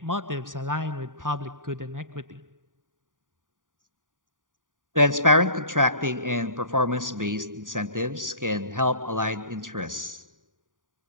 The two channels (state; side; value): late; left; 0.89 ms